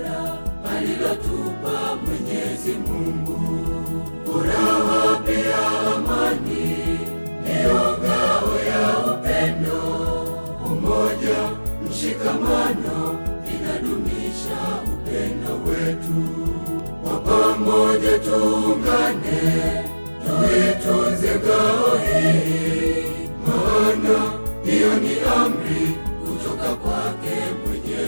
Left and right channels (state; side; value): inverted; both; correlation -1.00